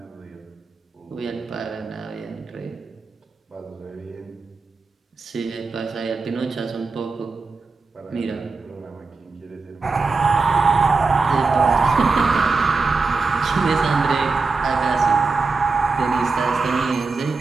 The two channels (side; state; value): left; quieter; 4.2 dB